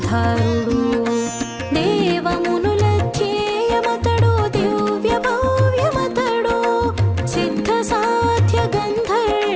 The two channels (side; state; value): both; identical; correlation 1.00